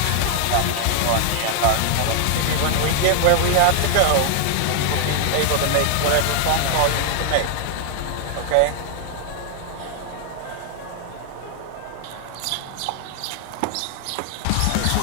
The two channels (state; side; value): different; both; correlation 0.00